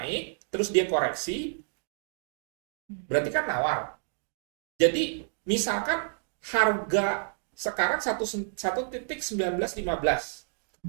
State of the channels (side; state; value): left; silent; digital silence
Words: terus dia koreksi, berarti kan nawar. Jadi misalkan harga sekarang 1.1915.